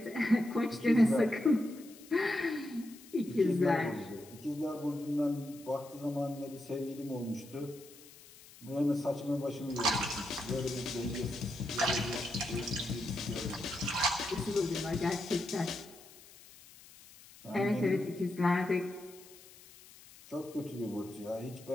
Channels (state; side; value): noise; left; hiss, 21 dB below the sound